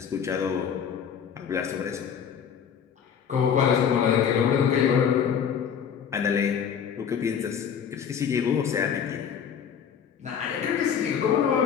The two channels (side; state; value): right; quieter; 7.8 dB